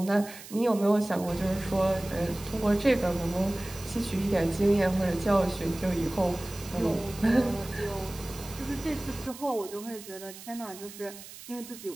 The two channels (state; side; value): noise; right; hiss, 15 dB below the sound